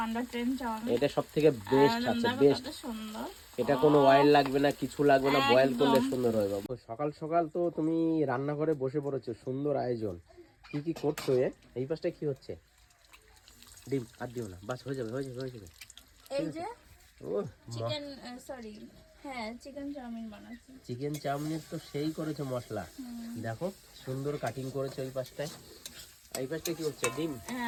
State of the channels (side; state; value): both; identical; correlation 1.00